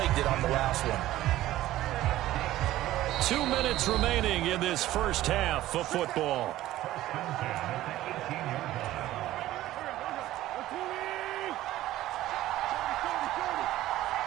it on the last one. 2 minutes remaining in this first half of football.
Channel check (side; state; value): left; quieter; 15.0 dB